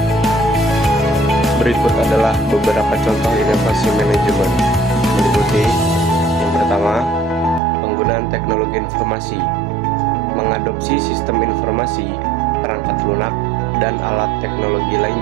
Berikut adalah beberapa contoh inovasi manajemen. Meliputi yang pertama, penggunaan teknologi informasi, mengadopsi sistem informasi, perangkat lunak, dan alat teknologi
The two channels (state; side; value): drops out; left; at 7.6 s